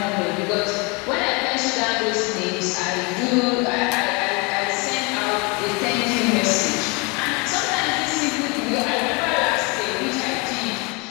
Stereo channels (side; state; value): right; quieter; 29.0 dB